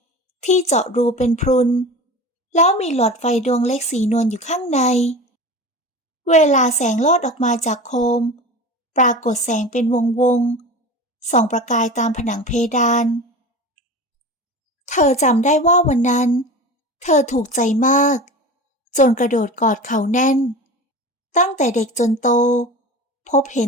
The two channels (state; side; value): normal; both; correlation 0.33